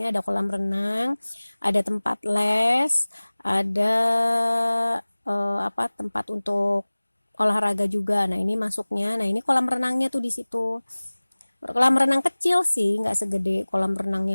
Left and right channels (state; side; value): inverted; both; correlation -1.00